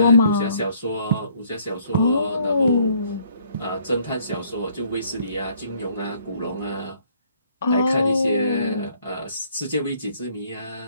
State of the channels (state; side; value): inverted; both; correlation -0.64